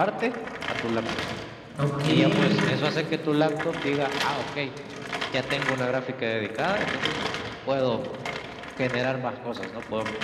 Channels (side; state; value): both; identical; correlation 1.00